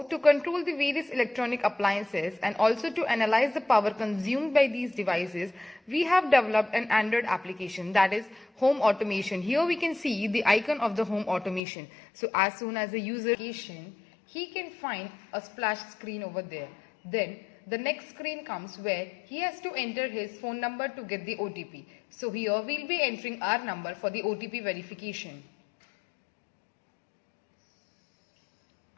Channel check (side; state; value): right; drops out; at 11.6 s